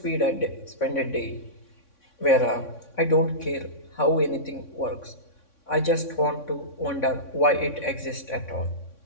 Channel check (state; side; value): late; right; 3.6 ms